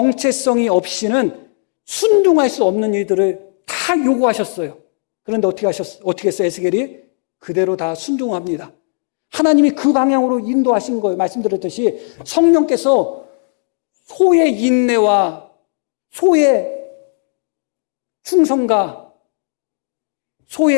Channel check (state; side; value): silent; right; digital silence